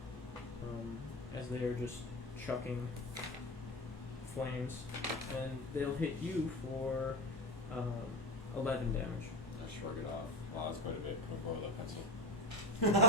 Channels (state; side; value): normal; both; correlation 0.21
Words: as they are just chucking flames. And they'll hit you for 11 damage. I shrug it off. Wow, that's quite a bit. Can we borrow that pencil?